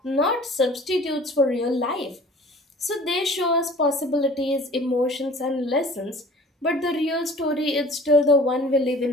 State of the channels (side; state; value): both; normal; correlation 0.47